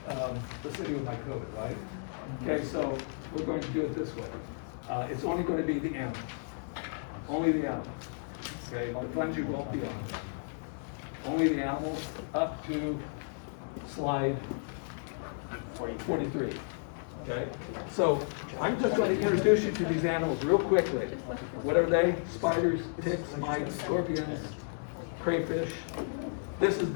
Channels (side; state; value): right; silent; digital silence